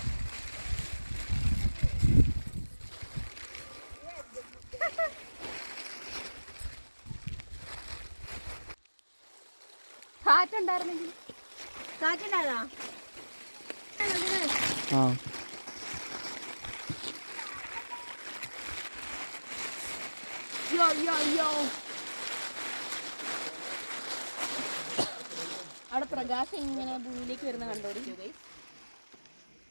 കാറ്റുണ്ടായിരുന്നെങ്കിൽ കാറ്റുണ്ടായതാ. അവിടെ പ്രകാശം ഇങ്ങനെ ഭൂമിയിലേക്ക് വരുന്ന കണ്ടോടി.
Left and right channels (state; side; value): inverted; both; correlation -1.00